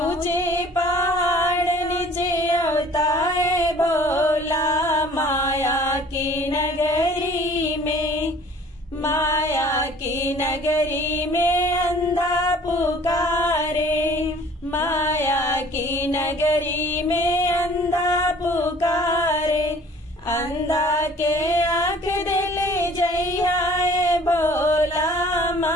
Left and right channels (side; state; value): both; normal; correlation 0.51